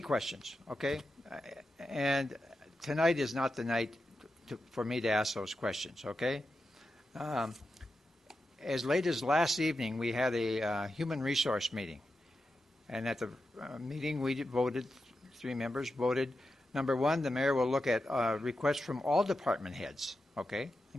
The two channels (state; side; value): normal; both; correlation 0.89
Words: okay? And tonight is not the night for me to ask those questions, okay? As late as last evening, we had a human resource meeting. And at the meeting, we voted, 3 members voted, number 1, the mayor will look at requests from all department heads, okay,